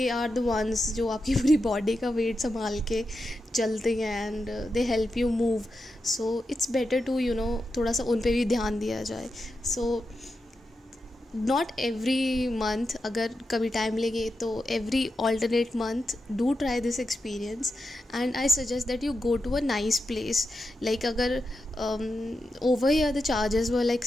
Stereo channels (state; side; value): normal; both; correlation 0.88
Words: are the ones जो आपकी पूरी बॉडी का वेट संभाल के चलते हैं and they help you move. So it's better to थोड़ा सा उन पे भी ध्यान दिया जाए. सो नॉट एवरी मंथ, अगर कभी टाइम लगे तो every alternate month do try this experience and I suggest that you go to a nice place. Like अगर over here the charges were like